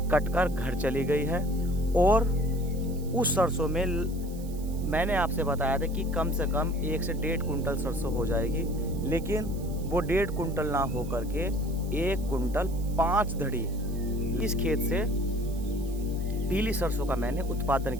कटकर घर चली गई है और उस सरसों में मैंने आपसे बताया था कि कम से कम 1 से 1.5 कुंटल सरसों हो जाएगी, लेकिन वो 1.5 कुंटल ना हो करके 1 कुंटल 5 धड़ी इस खेत से पीली सरसों का मैंने उत्पादन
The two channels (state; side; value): noise; right; hiss, 20 dB below the sound